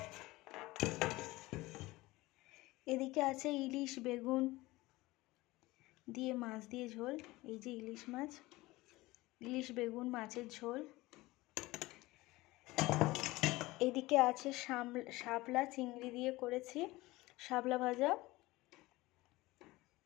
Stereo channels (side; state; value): right; quieter; 20.0 dB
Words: এদিকে আছে ইলিশ বেগুন দিয়ে মাছ দিয়ে ঝোল। এই যে ইলিশ বেগুন মাছের ঝোল। এদিকে আছে শাপলা চিংড়ি দিয়ে করেছি শাপলা ভাজা।